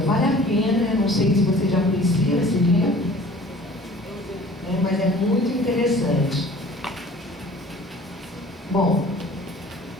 Vale a pena, não sei se vocês já conheciam esse livro, mas é muito interessante. Bom,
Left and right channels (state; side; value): normal; both; correlation 0.48